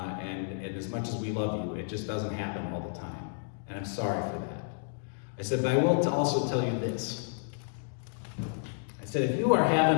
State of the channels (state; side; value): silent; right; digital silence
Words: as much as we love you, it just doesn't happen all the time. And I'm sorry for that. I said, but I will also tell you this. I said, if you are